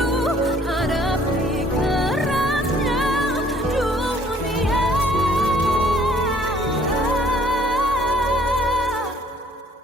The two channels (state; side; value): normal; both; correlation 0.59